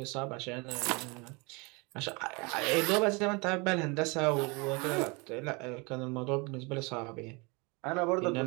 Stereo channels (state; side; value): quieter; left; 28.8 dB